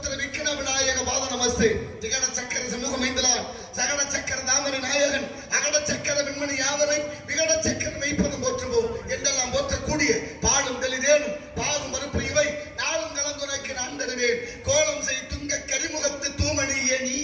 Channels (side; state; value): both; identical; correlation 1.00